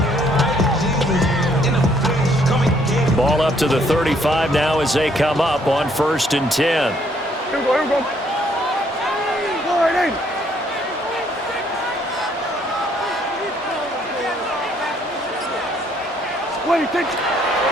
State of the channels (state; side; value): normal; both; correlation 0.67